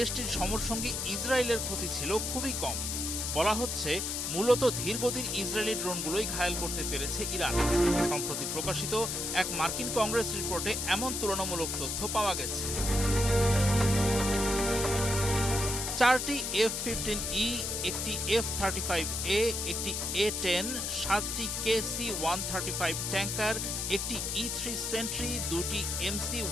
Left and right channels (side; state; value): left; noise; hiss, 2 dB below the sound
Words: সমরসঙ্গী ইসরায়েলের ক্ষতি ছিল খুবই কম। বলা হচ্ছে মূলত ধীরগতির ইসরায়েলি ড্রোনগুলোই ঘায়েল করতে পেরেছে ইরান। সম্প্রতি প্রকাশিত এক মার্কিন কংগ্রেস রিপোর্টে এমন তুলনামূলক তথ্য পাওয়া গেছে। ৪টি F-15E, একটি F-35A, একটি A-10, ৭টি KC-135 ট্যাঙ্কার, একটি E-3 সেন্ট্রি, ২টি